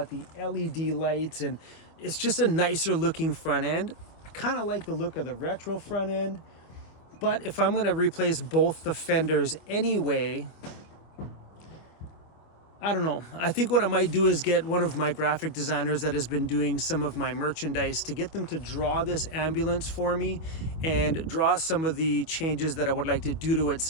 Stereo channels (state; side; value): late; right; 25 ms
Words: the LED lights, and it's just a nicer looking front end. I kind of like the look of the retro front end, but if I'm going to replace both the fenders anyway, I don't know. I think what I might do is get one of my graphic designers that has been doing some of my merchandise to get them to draw this ambulance for me and draw some of the changes that I would like to do to it